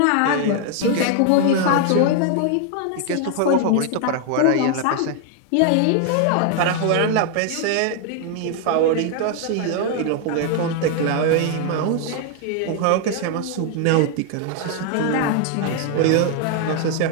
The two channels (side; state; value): both; different; correlation 0.00